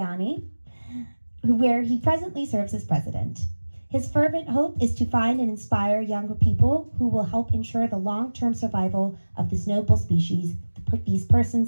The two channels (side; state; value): both; inverted; correlation -1.00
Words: where he presently serves as president. His fervent hope is to find and inspire younger people who will help ensure the long-term survival of this noble species, these